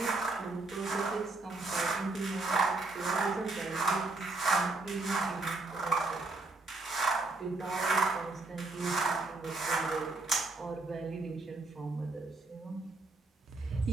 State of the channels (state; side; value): quieter; left; 3.3 dB